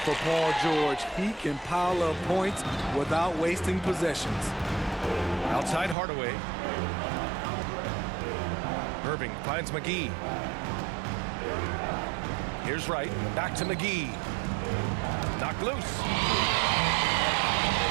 for Paul George. He can pile up points without wasting possessions. Outside Hardaway. Irving finds McGee. Here's Wright. Back to McGee. Knocked loose.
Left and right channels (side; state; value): left; drops out; at 6.0 s